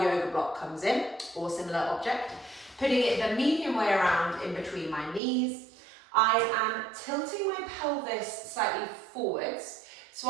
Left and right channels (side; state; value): left; drops out; at 5.2 s